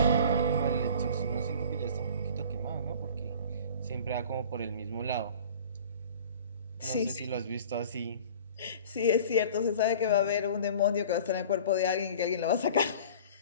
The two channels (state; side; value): inverted; both; correlation -0.44